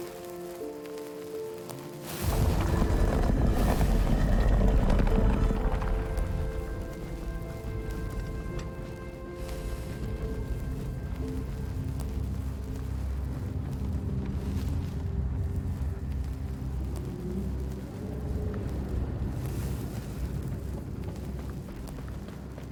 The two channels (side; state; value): both; identical; correlation 1.00